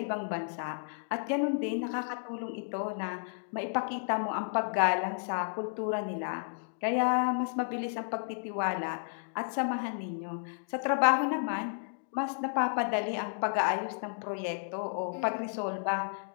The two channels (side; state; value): right; silent; digital silence